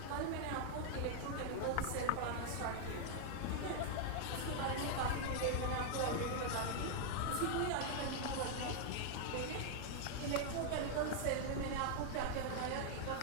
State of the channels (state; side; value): different; both; correlation 0.00